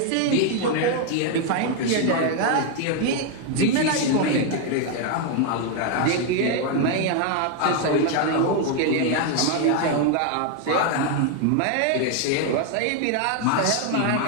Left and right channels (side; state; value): both; different; correlation 0.01